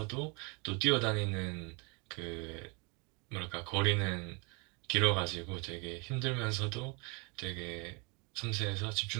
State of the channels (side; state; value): left; quieter; 31.2 dB